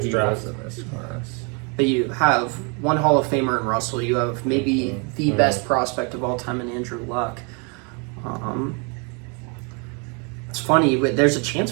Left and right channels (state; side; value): quieter; left; 34.3 dB